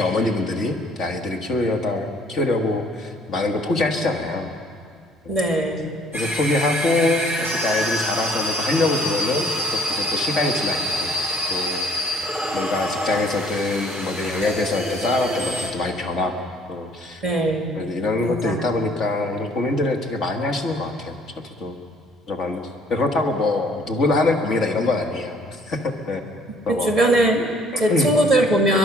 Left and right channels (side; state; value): both; normal; correlation 0.59